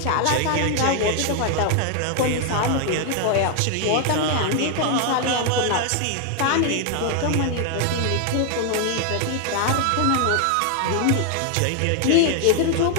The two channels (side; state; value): both; different; correlation 0.00